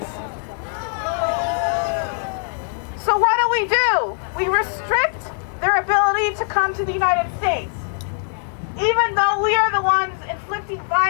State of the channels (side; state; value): right; silent; 57 dB below the other